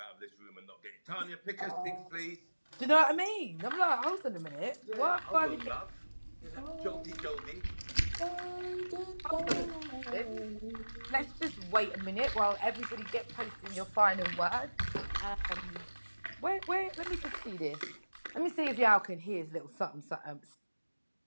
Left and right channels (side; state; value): both; inverted; correlation -1.00